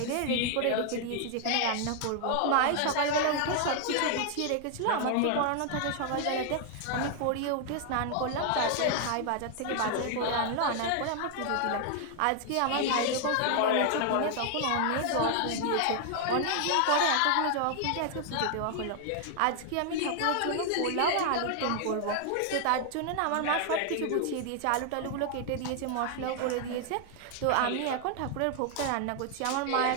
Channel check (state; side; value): different; both; correlation 0.00